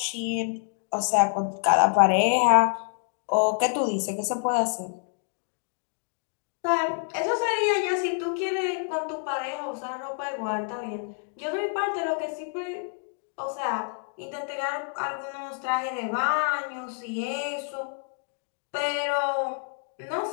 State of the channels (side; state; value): right; silent; 60 dB below the other